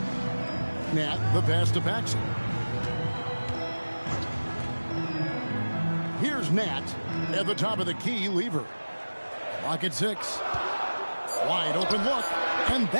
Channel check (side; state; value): both; inverted; correlation -1.00